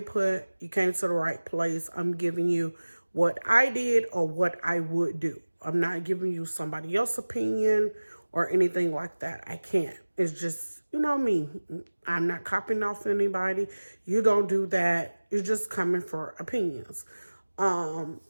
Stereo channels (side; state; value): both; inverted; correlation -1.00